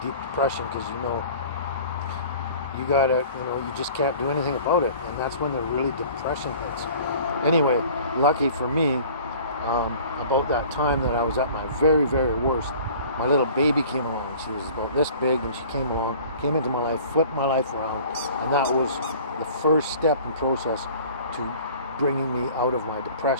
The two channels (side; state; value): both; inverted; correlation -0.47